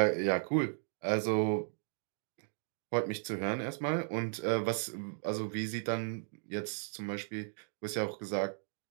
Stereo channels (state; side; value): silent; left; digital silence